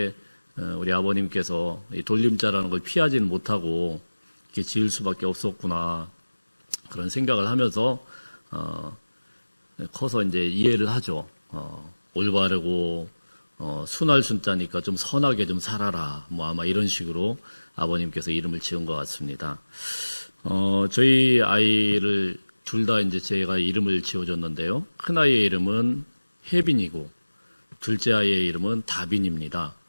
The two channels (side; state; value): both; inverted; correlation -1.00